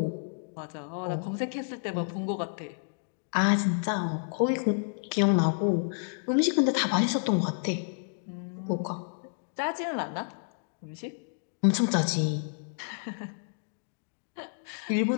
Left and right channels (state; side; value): silent; right; digital silence